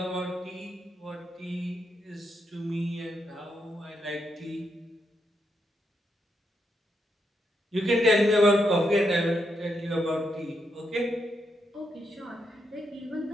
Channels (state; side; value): normal; both; correlation 0.81